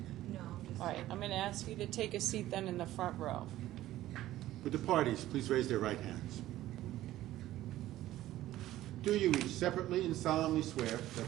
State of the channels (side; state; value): left; quieter; 14.7 dB